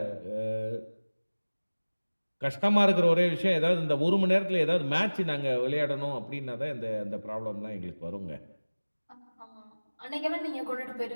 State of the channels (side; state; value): both; inverted; correlation -1.00